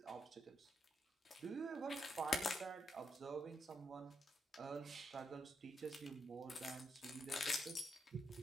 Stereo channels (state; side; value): normal; both; correlation 0.81